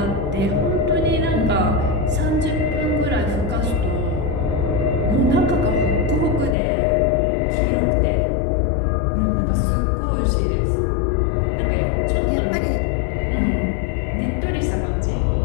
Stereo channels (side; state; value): right; drops out; at 6.6 s